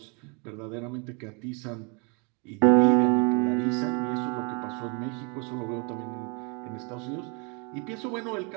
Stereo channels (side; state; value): left; quieter; 32.8 dB